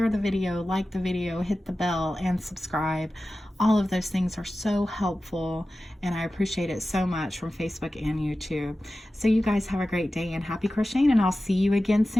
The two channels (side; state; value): both; normal; correlation 0.95